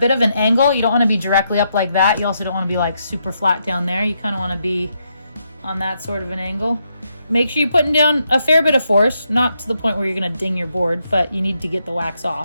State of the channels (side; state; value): both; inverted; correlation -0.79